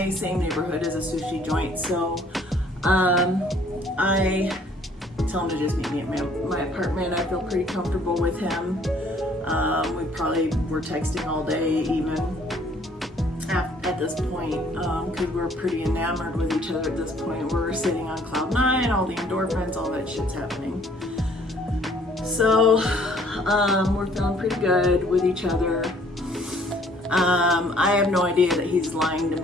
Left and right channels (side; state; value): both; normal; correlation 0.59